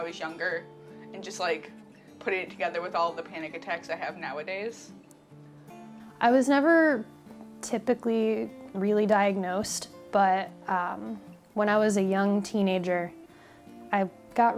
was younger, and just like putting it together with all of the panic attacks I have nowadays. I was never typically really diagnosed, but when I was a young teenager, I got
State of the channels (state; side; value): identical; both; correlation 1.00